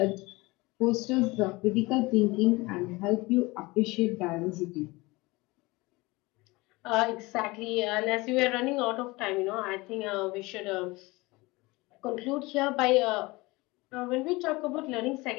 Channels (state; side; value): quieter; right; 22.8 dB